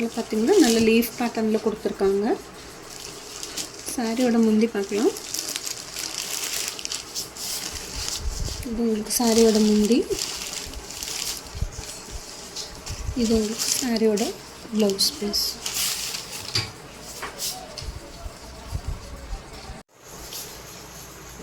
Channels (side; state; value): both; identical; correlation 1.00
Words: பார்த்திங்கன்னா நல்ல லீஃப் பேட்டர்னில் கொடுத்துருக்காங்க. சாரியோட முந்தி பார்க்கலாம். இது உங்களுக்கு சாரியோட முந்தி. இது உங்களுக்கு சாரியோட ப்ளவுஸ் பீஸ்.